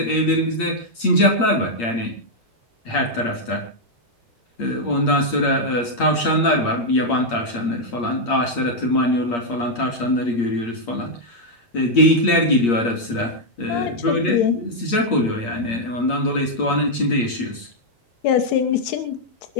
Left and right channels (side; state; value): right; late; 8.6 ms